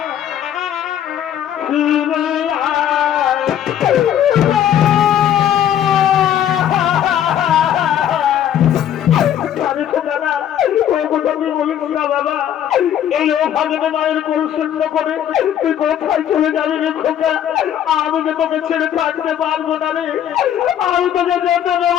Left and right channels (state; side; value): quieter; right; 10.3 dB